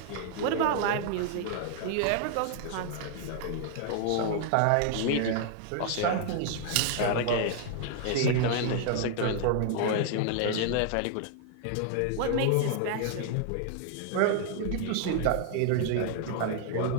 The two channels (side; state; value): both; different; correlation 0.00